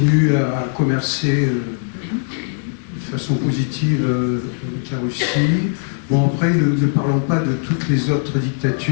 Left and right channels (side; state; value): right; silent; digital silence